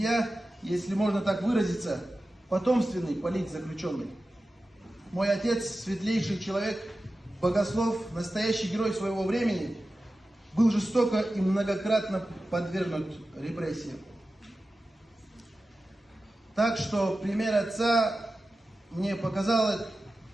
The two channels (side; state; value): both; normal; correlation 0.94